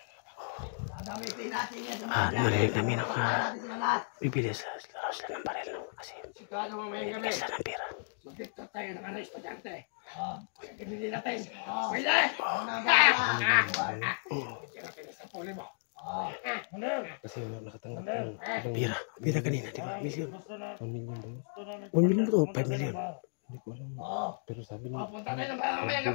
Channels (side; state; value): right; silent; digital silence